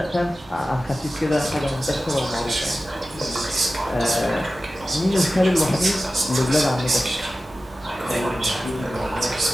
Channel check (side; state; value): both; normal; correlation 0.95